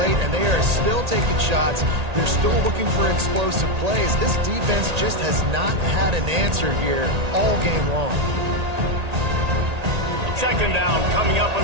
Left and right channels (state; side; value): late; left; 1.8 ms